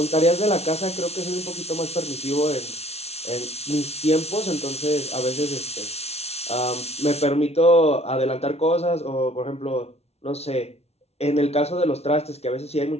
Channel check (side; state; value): right; late; 0.31 ms